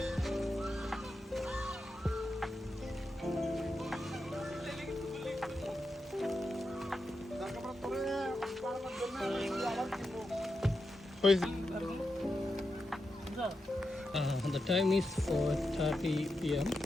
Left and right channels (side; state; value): both; normal; correlation 0.87